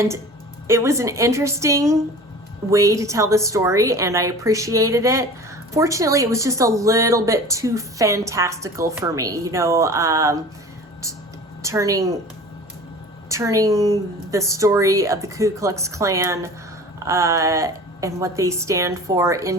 it was an interesting way to tell the story, and I appreciated it. Fortunately, it was just a little bit too fantastical for me, you know, turning the story of the Ku Klux Klan and what they stand for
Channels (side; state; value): both; normal; correlation 0.40